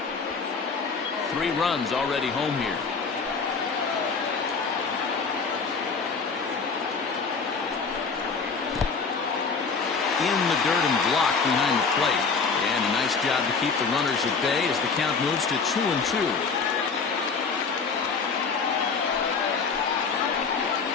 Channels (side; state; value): right; quieter; 5.0 dB